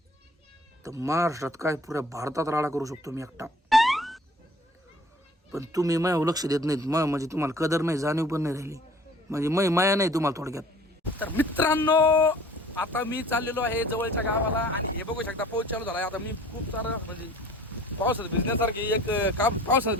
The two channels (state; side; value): normal; both; correlation 0.50